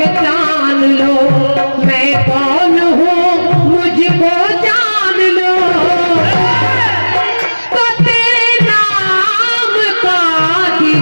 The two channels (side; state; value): both; inverted; correlation -1.00